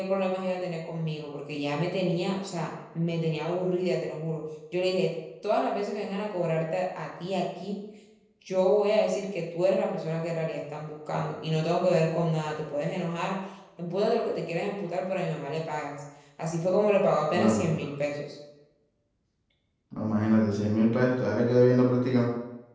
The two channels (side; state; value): both; identical; correlation 1.00